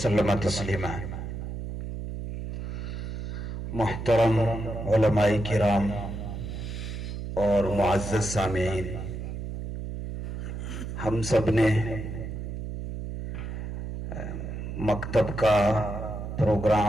تسلیما۔ محترم علماء کرام اور معزز سامعین، ہم سب نے مکتب کا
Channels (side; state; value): right; noise; hum, 6 dB below the sound